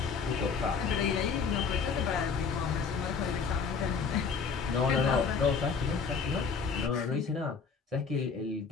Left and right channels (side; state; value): right; quieter; 5.5 dB